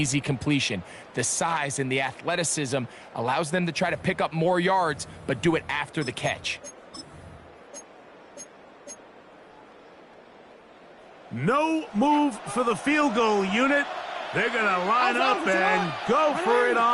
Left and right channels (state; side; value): identical; both; correlation 1.00